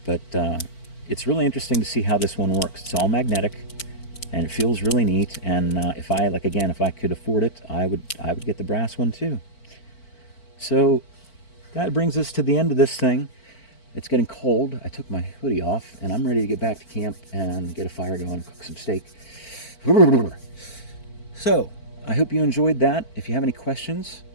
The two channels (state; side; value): late; right; 4.5 ms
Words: But it's really interesting to see how this one works. It's all magnetic, and it feels really neat. And if I could afford it, I would get the brass one too. So that brings us to the end of this thing. It's getting cold. I took my hoodie off, and I'm ready to get back to camp and get a fire going and cook some steak. So I hope you enjoyed that. If you have any questions,